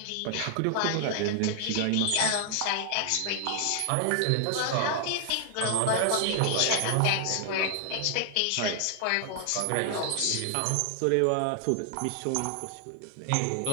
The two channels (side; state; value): both; different; correlation 0.00